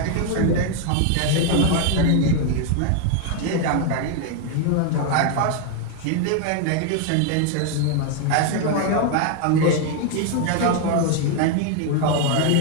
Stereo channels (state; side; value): different; both; correlation 0.01